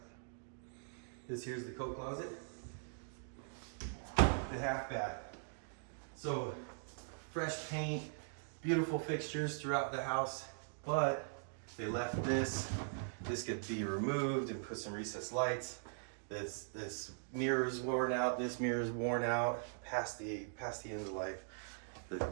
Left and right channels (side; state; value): left; silent; digital silence